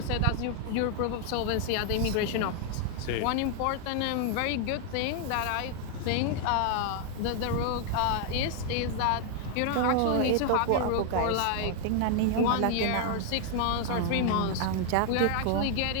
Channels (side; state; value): both; different; correlation 0.00